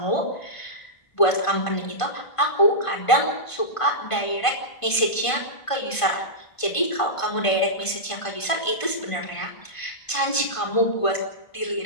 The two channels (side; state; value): right; late; 1.5 ms